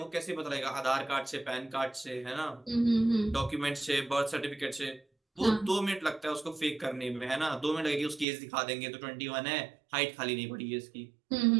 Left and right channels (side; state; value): left; drops out; at 8.2 s